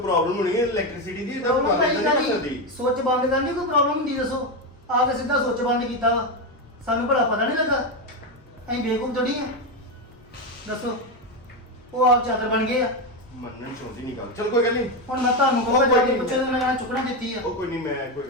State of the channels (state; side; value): normal; both; correlation 0.11